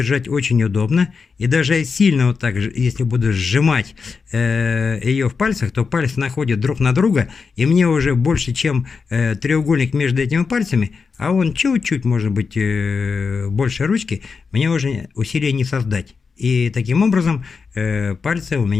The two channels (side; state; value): right; quieter; 5.2 dB